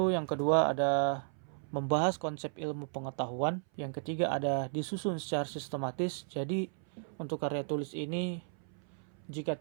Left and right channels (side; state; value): left; silent; 55 dB below the other